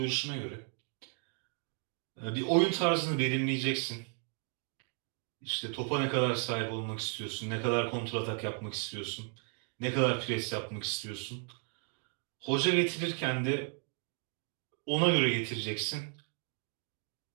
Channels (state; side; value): quieter; left; 37.4 dB